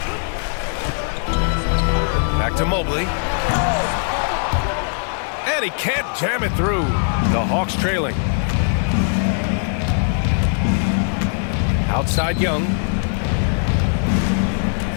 Back to Mobley. And he can't jam it through. The Hawks trailing. Outside Young.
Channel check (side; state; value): right; silent; 63 dB below the other